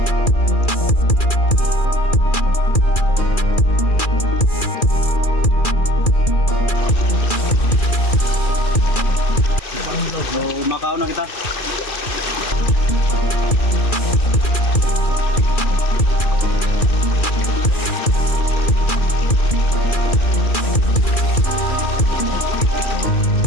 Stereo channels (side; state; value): right; late; 2.4 ms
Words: So, Macau na kita.